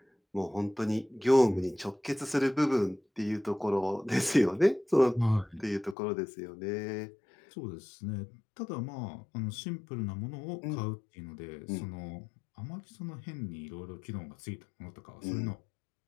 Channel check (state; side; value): drops out; right; at 6.0 s